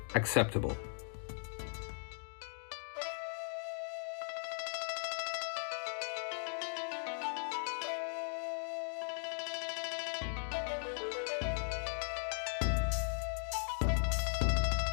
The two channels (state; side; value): silent; right; 52 dB below the other